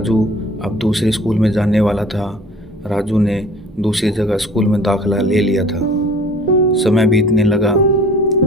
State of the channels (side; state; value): both; normal; correlation 0.48